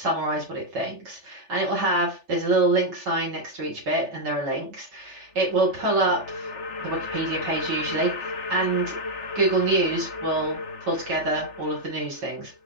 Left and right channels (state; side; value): late; left; 3.4 ms